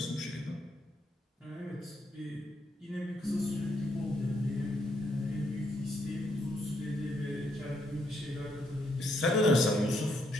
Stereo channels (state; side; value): normal; both; correlation 0.75